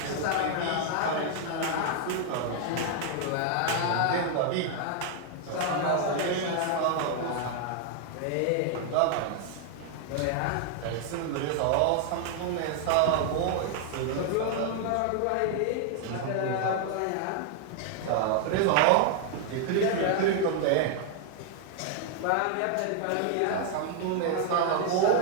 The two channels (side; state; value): both; different; correlation 0.00